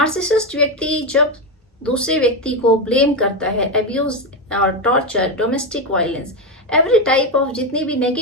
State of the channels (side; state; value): both; normal; correlation 0.10